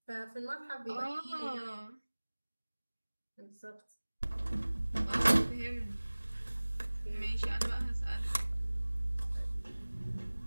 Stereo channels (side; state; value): both; inverted; correlation -1.00